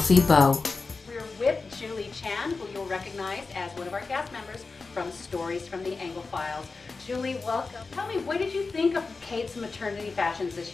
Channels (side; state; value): right; quieter; 4.1 dB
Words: Boe. We're with Julie Chan, who you'll recognize as one of our cast members from Stories from the Anglophiles. Julie, welcome. Tell me, what did you think of Kate's maternity fashions this